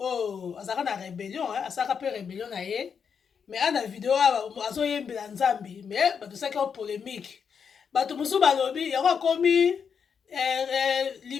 azalaka na rébellion asalaka mpe rébellion na ye mais ana video awa azoyembela nzambi mais bato esalaki o polémique bato mosusu balobi yango akomi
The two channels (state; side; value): quieter; right; 6.7 dB